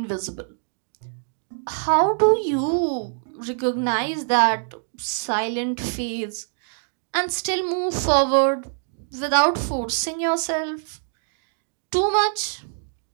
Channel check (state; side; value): silent; left; digital silence